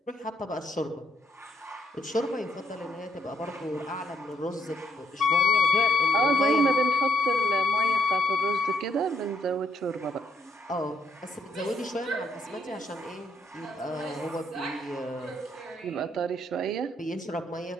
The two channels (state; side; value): normal; both; correlation 0.72